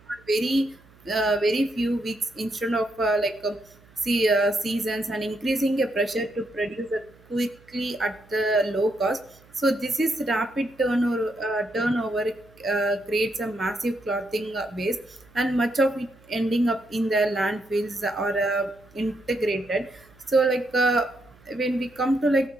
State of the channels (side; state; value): right; noise; hum, 27 dB below the sound